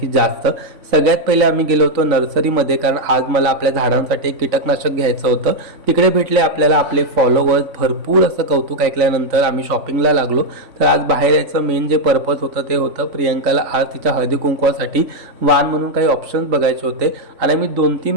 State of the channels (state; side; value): late; left; 3.5 ms